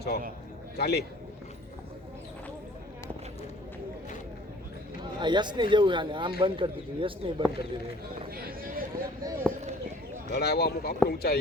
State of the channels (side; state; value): both; normal; correlation 0.52